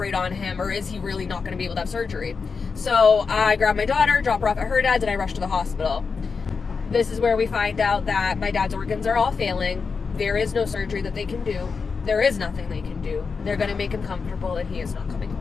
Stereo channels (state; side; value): quieter; right; 5.1 dB